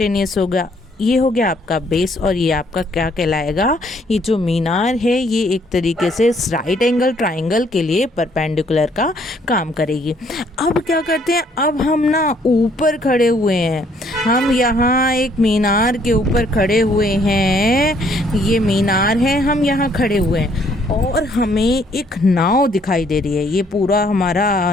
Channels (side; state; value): both; normal; correlation 0.65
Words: होगा, ये हो गया आपका बेस, और ये आपका क्या कहलाएगा, ये जो मीनार है ये एक तरीके से राइट एंगल ट्राइंगल के लिए परपेंडिकुलर का काम करेगी। अब क्या करते हैं, अब हम ना ऊपर खड़े हुए हैं, हम यहाँ एक मीनार के ऊपर खड़े हुए हैं, ये मीनार है, हम यहाँ खड़े हुए हैं और हमें एक नाव दिखाई दे रही है। ये पूरा